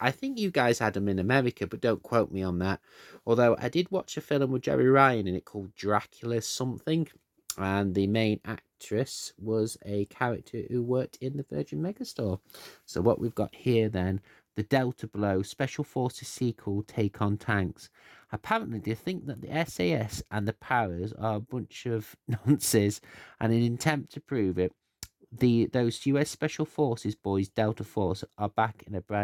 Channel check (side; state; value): both; identical; correlation 1.00